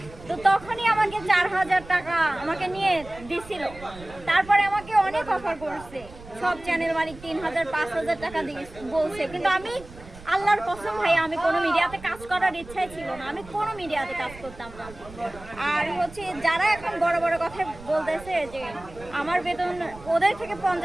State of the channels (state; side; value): noise; right; rumble, 18 dB below the sound